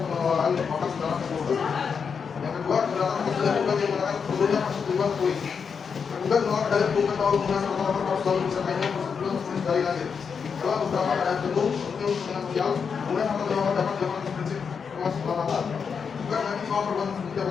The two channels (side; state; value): right; quieter; 6.2 dB